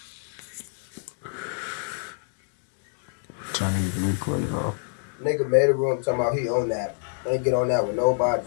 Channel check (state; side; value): silent; right; digital silence